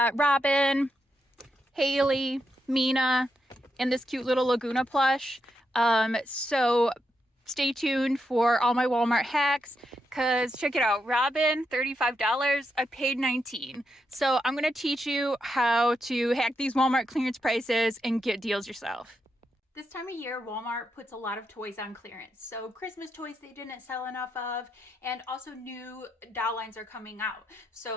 Robin, Haley, Mina, and this cute little Laguna plush. So stay tuned for all my Walmart hacks, because check it out. Robin, $35. I paid $19. So I'm going to teach you how to hack these Walmart clearance prices and get deals yourself. This time of year, Walmart puts a lot of toys on clearance. So Christmas toys they didn't sell enough of, and also new doll lines are coming out.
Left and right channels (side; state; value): both; normal; correlation 0.83